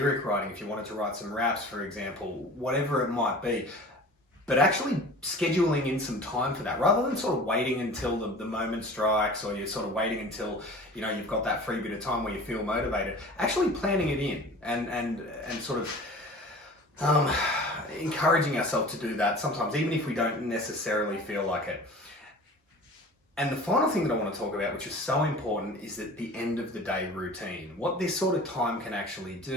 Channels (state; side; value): normal; both; correlation 0.41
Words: writing, if you wanted to write some raps, for example, whatever it might be. But actually scheduling in some time for that, rather than sort of waiting until the moment strikes, or you're sort of waiting until you've got that free bit of time where you feel motivated. Actually planning it in and sort of encouraging ourselves to do that sometimes, even if we don't necessarily feel like it. And the final thing that I want to talk about, which is so important, is that the end of the day routine. What this sort of time can actually